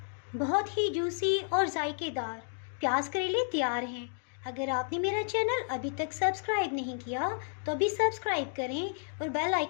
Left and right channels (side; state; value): right; silent; digital silence